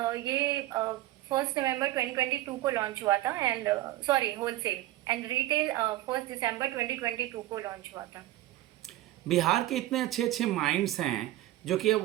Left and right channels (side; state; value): left; quieter; 15.5 dB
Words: ये 1 नवंबर 2022 को लॉन्च हुआ था, and sorry wholesale, and retail 1 दिसंबर 2022 को लॉन्च हुआ था। बिहार के इतने अच्छे अच्छे माइंड्स हैं जो कि अब